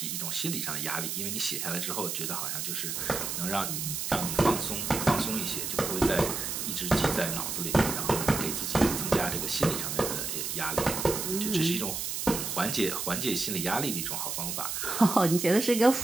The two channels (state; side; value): noise; right; hiss, 3 dB below the sound